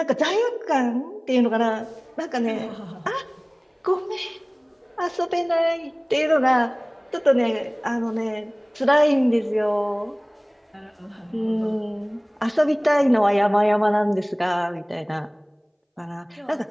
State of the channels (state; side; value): identical; both; correlation 1.00